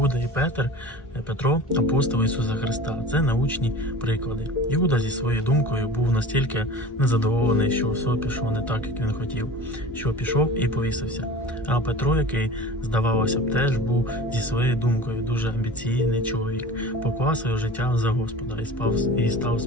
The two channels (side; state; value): both; normal; correlation 0.37